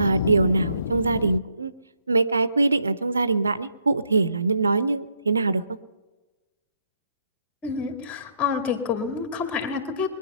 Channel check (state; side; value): inverted; both; correlation -0.72